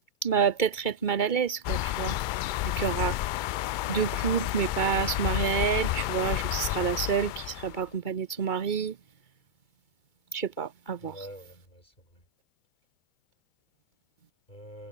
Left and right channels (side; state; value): right; late; 2.2 ms